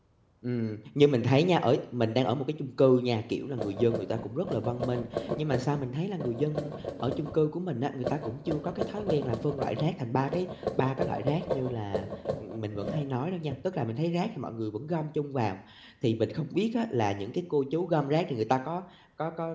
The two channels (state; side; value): identical; both; correlation 1.00